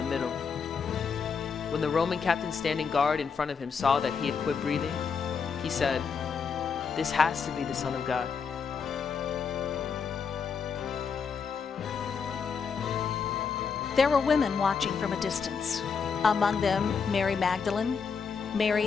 middle. When the Roman captain standing guard in front of him saw that he had quit breathing, he said, "This has to be the Son of God." There were women watching from a distance. Among them, Mary Magdalene,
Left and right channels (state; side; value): quieter; right; 5.9 dB